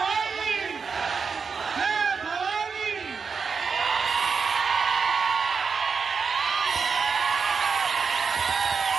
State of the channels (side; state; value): left; quieter; 5.5 dB